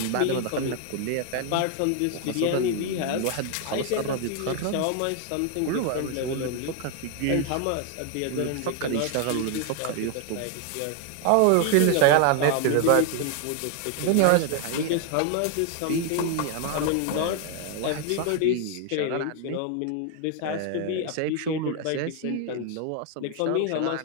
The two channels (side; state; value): both; different; correlation 0.01